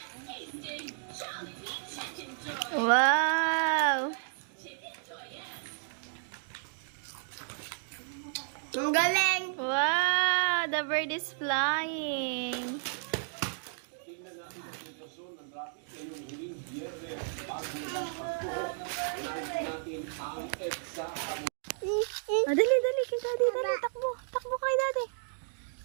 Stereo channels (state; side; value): silent; left; digital silence